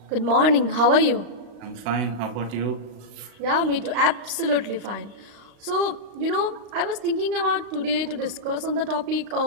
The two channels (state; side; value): late; left; 35 ms